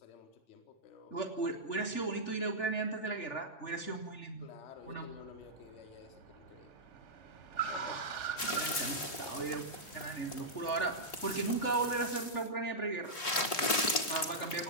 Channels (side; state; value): right; late; 3.4 ms